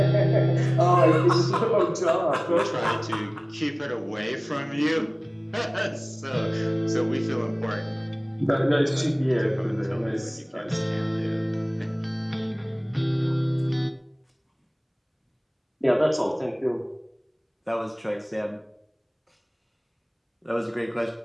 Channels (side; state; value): both; identical; correlation 1.00